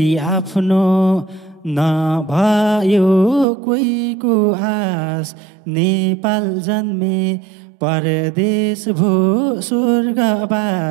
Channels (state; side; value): drops out; left; at 3.5 s